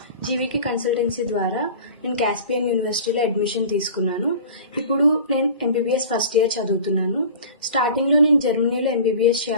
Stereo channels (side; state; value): both; inverted; correlation -0.40